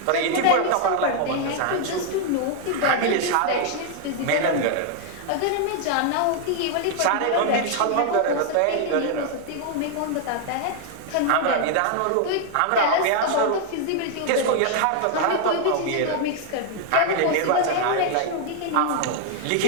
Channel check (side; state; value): both; different; correlation 0.00